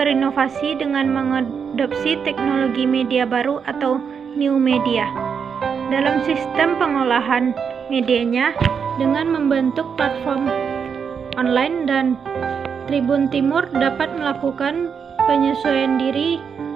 dengan mengadopsi teknologi media baru atau new media dalam sistem pengolahan medianya dengan membentuk platform online, dan Tribun Timur dapat melakukan penyesuaian diri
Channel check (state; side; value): quieter; left; 6.6 dB